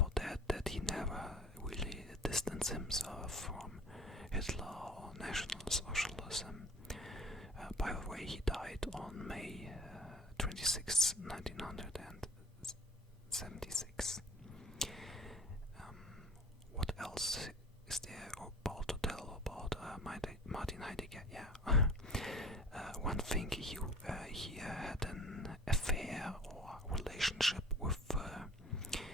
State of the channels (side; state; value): both; normal; correlation 0.45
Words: that he never really distanced himself from Hitler or National Socialism. By the way, he died on May 26, 1976. What else is there about to tell about Martin Heidegger? Yeah, one thing, he had an affair or relationship with a